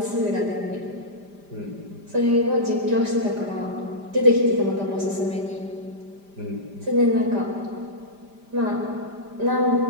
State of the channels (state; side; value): late; left; 5.0 ms